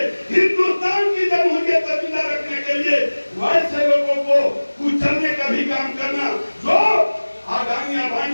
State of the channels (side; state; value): both; inverted; correlation -1.00